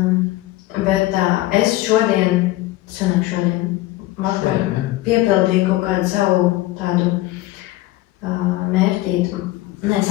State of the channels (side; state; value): right; quieter; 17.1 dB